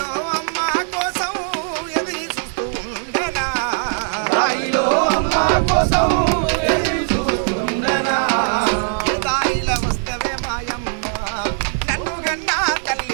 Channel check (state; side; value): silent; left; 59 dB below the other